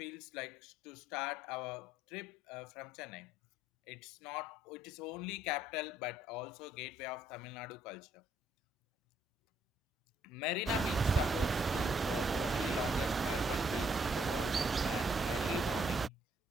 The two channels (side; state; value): both; normal; correlation 0.70